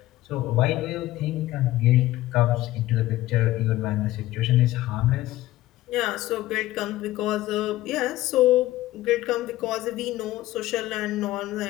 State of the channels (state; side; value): quieter; right; 16.2 dB